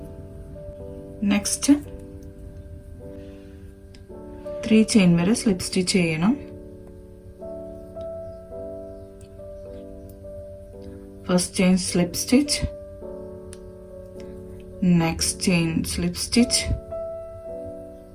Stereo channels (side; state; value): both; identical; correlation 1.00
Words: നെക്സ്റ്റ് 3 ചെയിൻ വരെ സ്ലിപ്പ് സ്റ്റിച്ച് ചെയ്യണം. First chain slip stitch, next chain slip stitch,